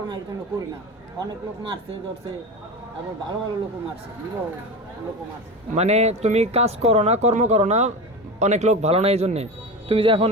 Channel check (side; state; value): both; normal; correlation 0.25